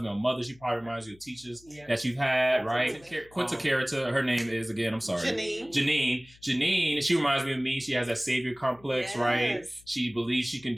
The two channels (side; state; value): left; noise; hum, 26 dB below the sound